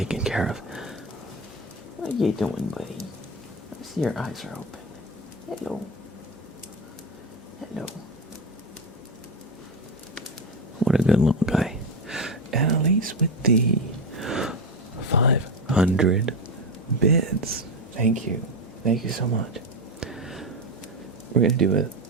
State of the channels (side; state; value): both; normal; correlation 0.15